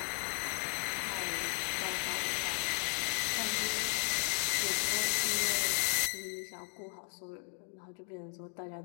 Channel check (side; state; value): right; silent; 54 dB below the other